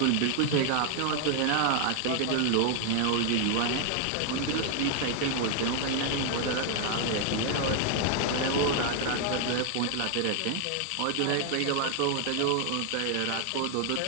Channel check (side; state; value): both; different; correlation 0.00